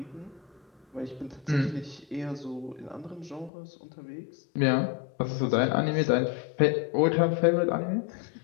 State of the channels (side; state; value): right; drops out; at 3.5 s